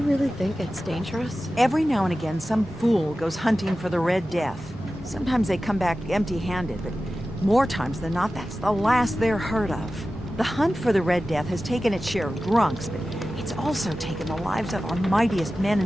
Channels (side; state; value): both; normal; correlation 0.94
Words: really think it's dangerous? Every now and again, some fool goes hunting for the Red Death. Sometimes they come back empty-handed, but more times than not, that's the last they're heard of. The hunt for the Red Death has taken its share of drunks, but it's also taken the lives of our mightiest men